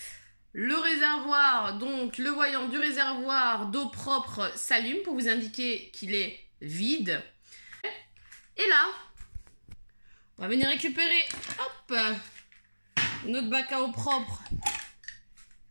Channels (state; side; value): inverted; both; correlation -1.00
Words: Le réservoir, donc le voyant du réservoir d'eau propre s'allume pour vous indiquer qu'il est vide. Et là, on va venir récupérer notre bac à eau propre